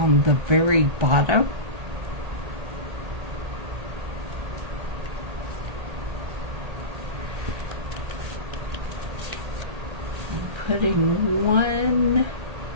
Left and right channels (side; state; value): left; late; 1.8 ms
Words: the very bottom. I'm putting one